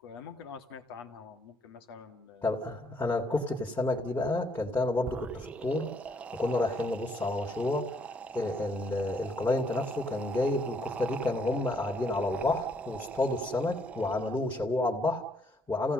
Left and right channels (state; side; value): normal; both; correlation 0.70